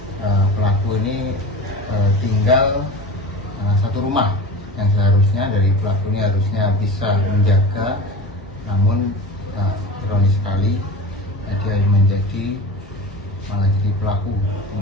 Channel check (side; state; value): both; normal; correlation 0.32